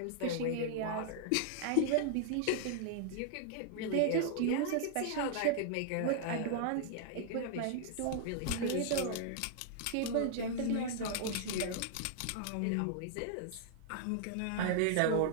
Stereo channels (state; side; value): different; both; correlation -0.01